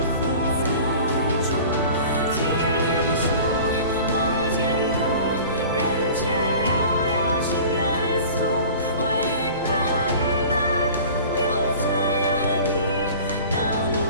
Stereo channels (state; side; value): inverted; both; correlation -0.41